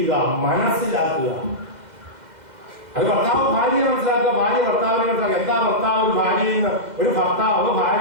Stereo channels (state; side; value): late; left; 2.0 ms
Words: മനസ്സിലാക്കുക. അത് ഭർത്താവ് ഭാര്യയെ മനസ്സിലാക്കുക, ഭാര്യ ഭർത്താവിനെ മനസ്സിലാക്കുക. എന്താ ഭർത്താവ് ഒരു ഭാര്യയിൽ നിന്ന്, ഒരു ഭർത്താവ്